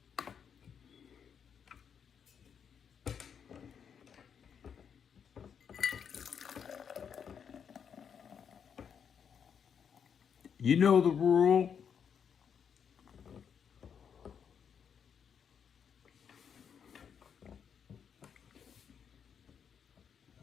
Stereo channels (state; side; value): quieter; right; 7.4 dB